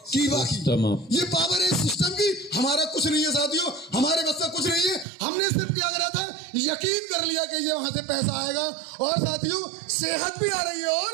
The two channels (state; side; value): drops out; left; at 5.1 s